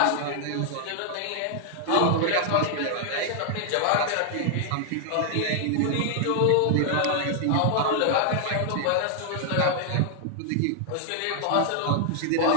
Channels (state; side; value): different; both; correlation 0.00